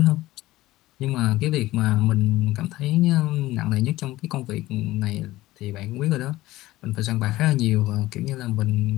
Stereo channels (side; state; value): right; quieter; 17.1 dB